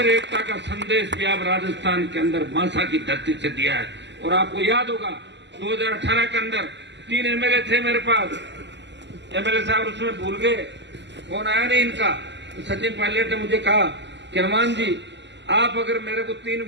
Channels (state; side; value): late; left; 0.51 ms